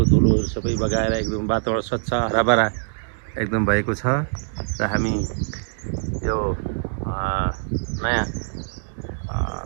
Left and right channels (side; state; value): left; silent; digital silence